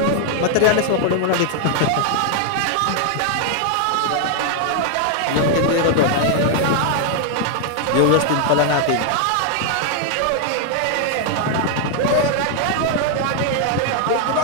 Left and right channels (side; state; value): both; different; correlation 0.00